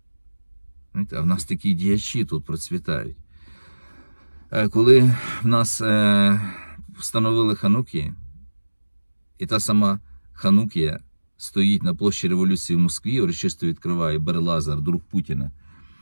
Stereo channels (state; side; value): inverted; both; correlation -1.00